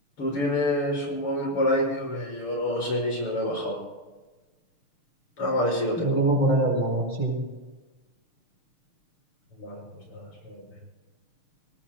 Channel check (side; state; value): right; late; 6.5 ms